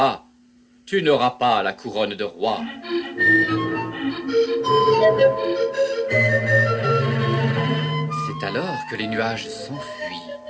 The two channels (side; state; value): both; identical; correlation 1.00